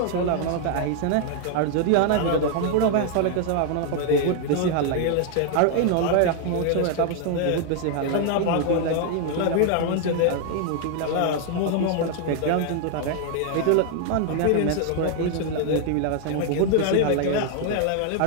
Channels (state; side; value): different; both; correlation 0.00